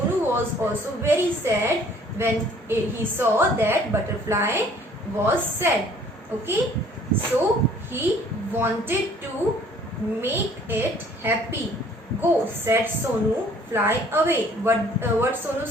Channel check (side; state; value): both; normal; correlation 0.56